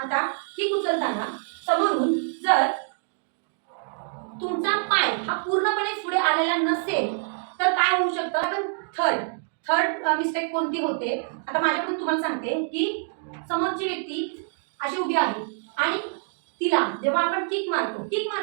उचलताना समोरून जर तुमचा पाय हा पूर्णपणे पुढे आलेला नसेल तर काय होऊ शकतं. आपण थर्ड मिस्टेक कोणती होते आता माझ्याकडून तुम्हाला सांगते की समोरची व्यक्ती अशी उभी आहे आणि तिला जेव्हा आपण किक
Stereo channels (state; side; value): silent; left; digital silence